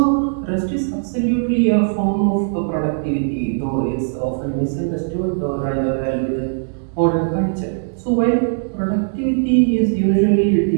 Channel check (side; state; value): left; silent; digital silence